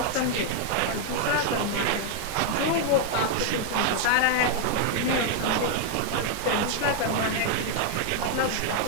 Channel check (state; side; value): different; both; correlation 0.00